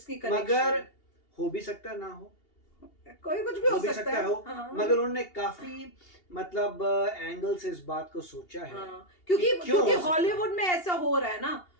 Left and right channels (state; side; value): late; right; 2.8 ms